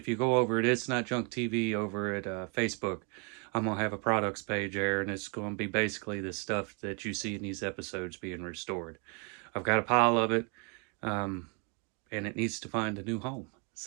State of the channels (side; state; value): left; quieter; 35.2 dB